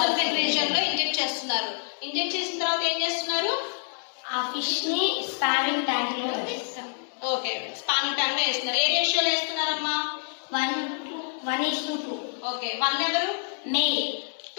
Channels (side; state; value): right; silent; 60 dB below the other